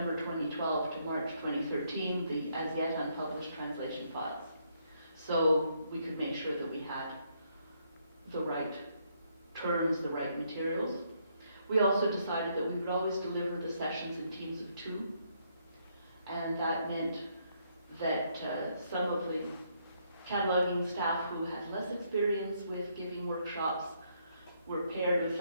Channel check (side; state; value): both; inverted; correlation -0.73